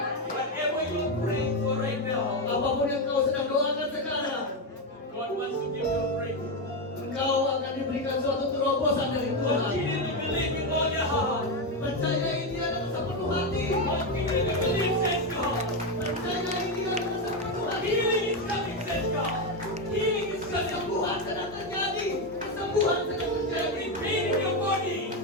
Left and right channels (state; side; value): normal; both; correlation 0.09